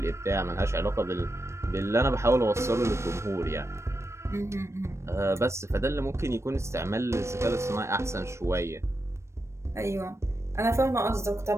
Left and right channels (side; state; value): left; late; 0.13 ms